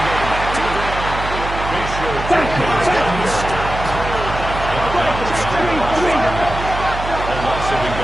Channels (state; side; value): noise; right; hum, 7 dB below the sound